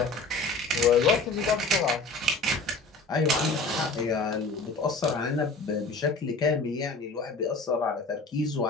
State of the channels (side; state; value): right; quieter; 3.4 dB